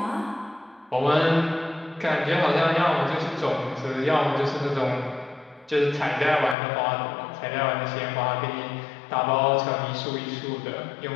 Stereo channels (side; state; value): right; drops out; at 6.6 s